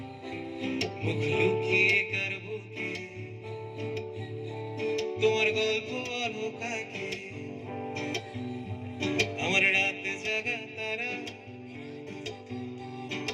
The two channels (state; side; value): identical; both; correlation 1.00